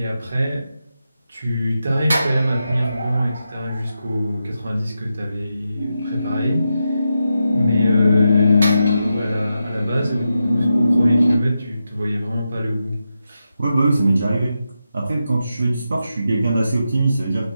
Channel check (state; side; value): inverted; both; correlation -0.88